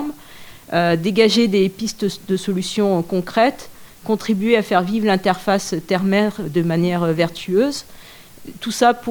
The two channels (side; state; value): both; identical; correlation 1.00